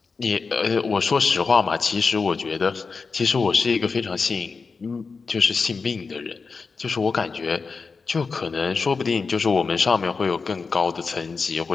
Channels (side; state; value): right; quieter; 4.7 dB